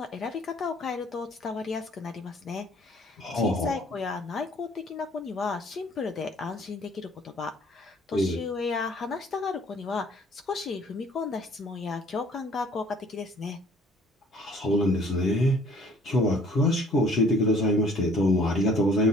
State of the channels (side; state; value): both; normal; correlation 0.56